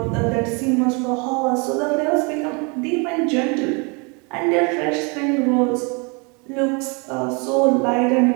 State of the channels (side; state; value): left; quieter; 32.0 dB